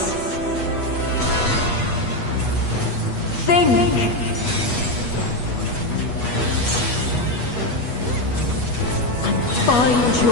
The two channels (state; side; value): late; right; 8.2 ms